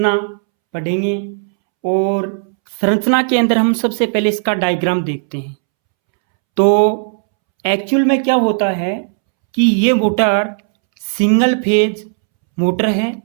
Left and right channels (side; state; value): left; silent; 69 dB below the other